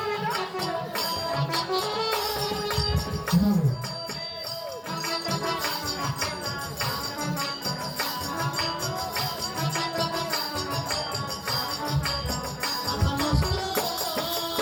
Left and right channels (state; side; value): identical; both; correlation 1.00